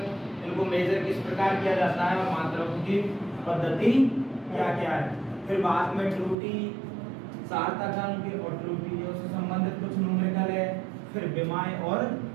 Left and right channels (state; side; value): drops out; left; at 6.4 s